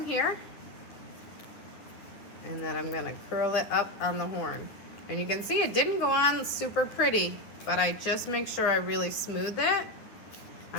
here, and then I'm gonna curl it up on the horn. And you can see it didn't go on super pretty, but I just make sure I really smooth it.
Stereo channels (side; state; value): right; late; 9.9 ms